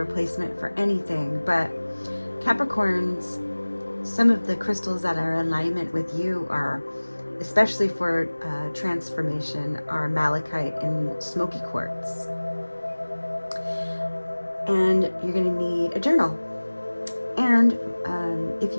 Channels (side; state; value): both; inverted; correlation -1.00